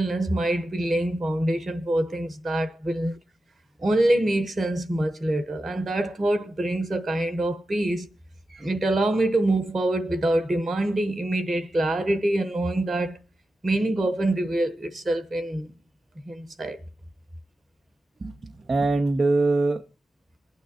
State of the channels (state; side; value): normal; both; correlation 0.91